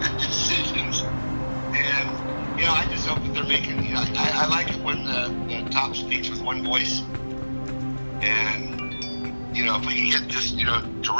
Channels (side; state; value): both; inverted; correlation -1.00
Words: good decisions. And, you know, I just hope that they're making, you know, I like it when the top speaks with one voice. And, you know, if we can get just, you know,